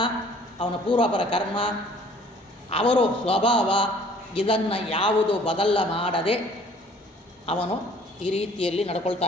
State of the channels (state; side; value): normal; both; correlation 0.55